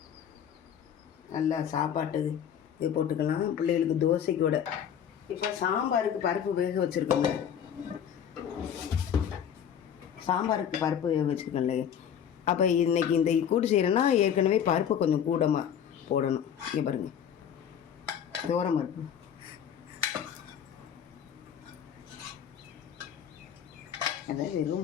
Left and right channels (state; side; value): quieter; right; 8.8 dB